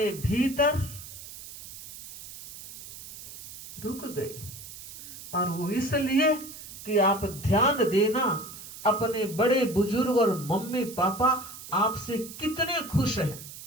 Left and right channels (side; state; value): right; noise; hiss, 13 dB below the sound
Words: भीतर रुक गई, और वो इसलिए कि आप ध्यान देना, अपने बड़े बुजुर्ग और मम्मी पापा आपसे कितने खुश हैं।